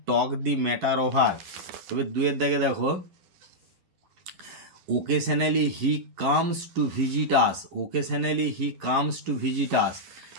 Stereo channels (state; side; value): late; left; 11 ms